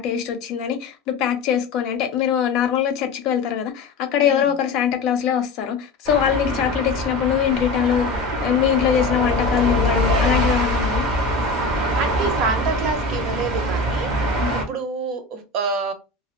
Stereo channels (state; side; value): quieter; right; 3.7 dB